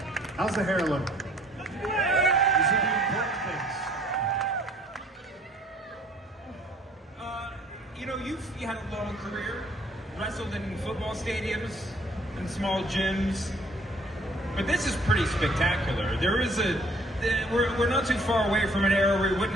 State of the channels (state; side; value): normal; both; correlation 0.58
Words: How's the hair look? These are the important things. You had a long career, wrestled in football stadiums and small gyms, but this is pretty spectacular. We're not too far away from an era where we